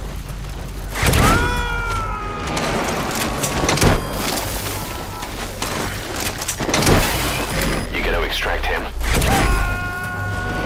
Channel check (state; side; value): identical; both; correlation 1.00